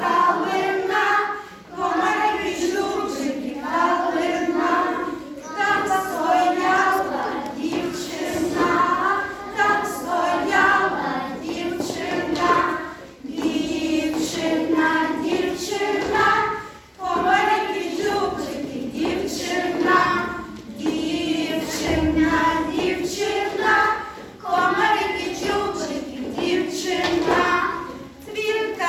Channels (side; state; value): both; identical; correlation 1.00